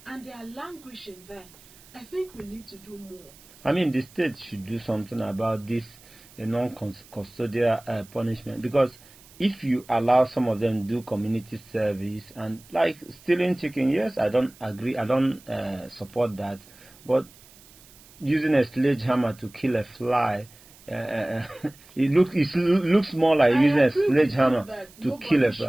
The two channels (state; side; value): noise; right; hiss, 24 dB below the sound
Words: and they are languishing there, I think we need to do more. I mean, the state should do something about this non-custodial punishment, because if you allow some of them to do community service and like stealing chicken, yes, I don't agree, I don't support that, but using a sledgehammer to kill a fly, it looks more like using a sledgehammer to kill a